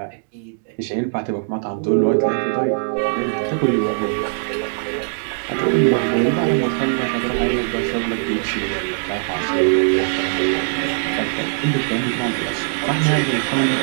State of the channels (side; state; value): left; silent; digital silence